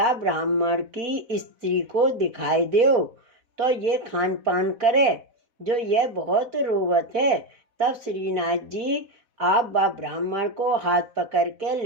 ब्राह्मण की स्त्री को दिखाई दो तो ये खान पान करे, जो यह बहुत रोवत है। तब श्रीनाथ जी आप बा ब्राह्मण को हाथ पकड़ के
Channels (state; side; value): late; left; 4.1 ms